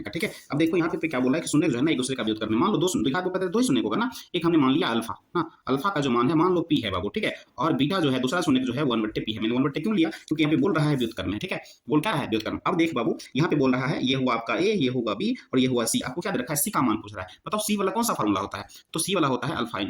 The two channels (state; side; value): identical; both; correlation 1.00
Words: का, ठीक है। अब देखो यहाँ पे क्या बोला है कि शून्य जो है ना एक दूसरे का व्युत्क्रम में, मान लो दो द्विघात बहुपद है, 2 ही शून्य होगा ना, एक हमने मान लिया अल्फा ना, अल्फा का जो मान है मान लो पी है बाबू, ठीक है। और बीटा जो है दूसरा शून्य जो है 1/p है, मैंने 1/p क्यों लिया, क्योंकि यहाँ पे बोल रहा है व्युत्क्रम में, ठीक है, बोल क्या रहा है व्युत्क्रम। अब देख बाबू यहाँ पे बोल रहा है ये हुआ आपका ए, ये होगा बी और ये हुआ सी, आपको क्या दे रखा है, सी का मान पूछ रहा है। बताओ सी वाला कौन सा फॉर्मूला होता है, तो सी वाला होता है अल्फा